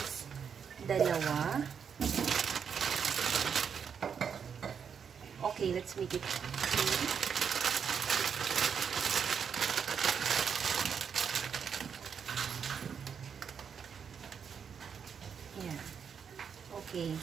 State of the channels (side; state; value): left; quieter; 7.0 dB